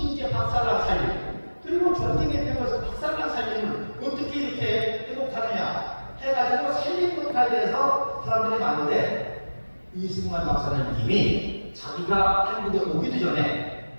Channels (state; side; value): inverted; both; correlation -1.00